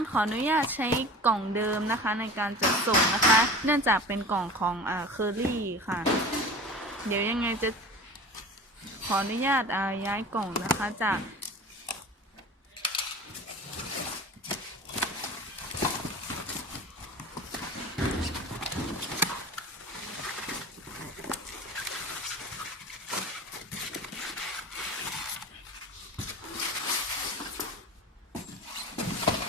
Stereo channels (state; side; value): normal; both; correlation 0.36